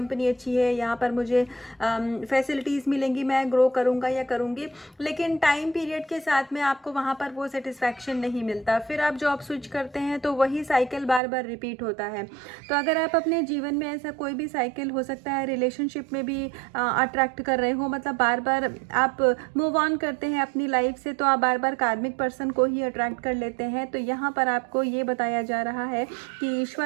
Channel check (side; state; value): left; drops out; at 11.2 s